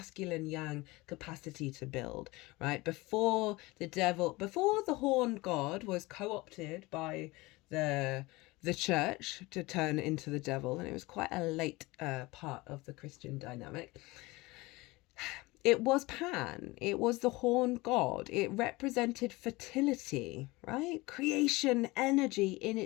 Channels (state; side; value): quieter; right; 22.1 dB